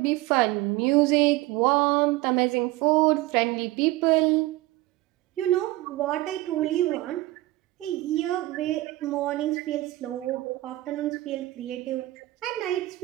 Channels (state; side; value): quieter; left; 18.2 dB